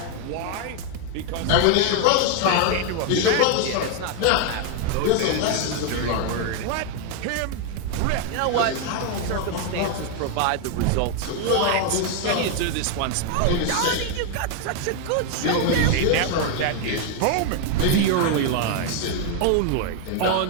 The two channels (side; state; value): both; different; correlation 0.01